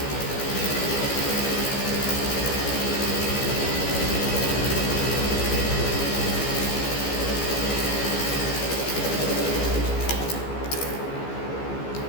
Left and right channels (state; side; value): late; right; 15 ms